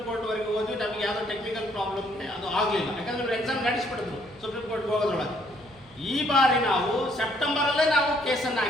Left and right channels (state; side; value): noise; right; hum, 27 dB below the sound